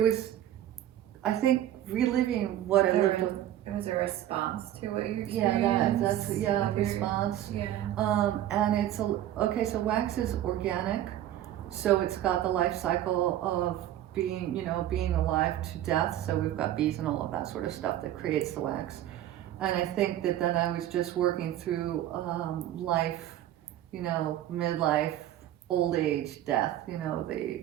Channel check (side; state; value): left; quieter; 12.5 dB